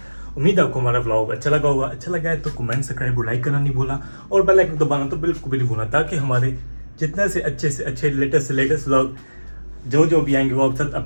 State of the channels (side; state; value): both; inverted; correlation -1.00